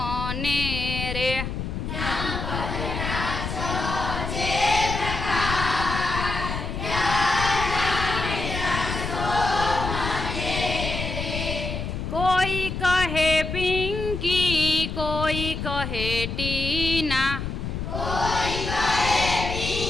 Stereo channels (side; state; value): left; noise; rumble, 4 dB below the sound